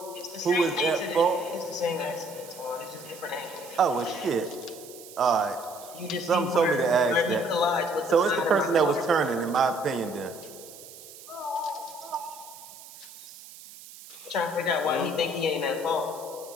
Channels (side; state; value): right; noise; hiss, 17 dB below the sound